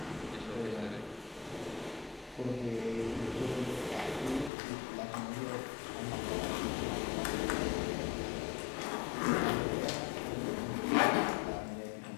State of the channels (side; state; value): right; drops out; at 4.5 s